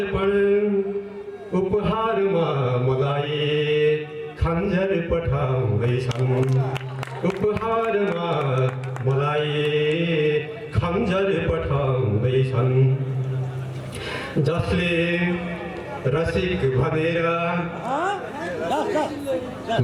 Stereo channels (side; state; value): both; identical; correlation 1.00